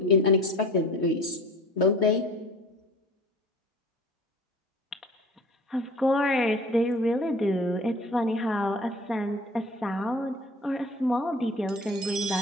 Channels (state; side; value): normal; both; correlation 0.44